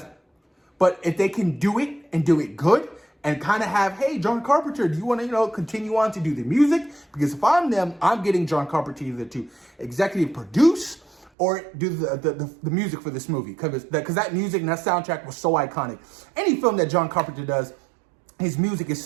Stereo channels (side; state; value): left; drops out; at 11.3 s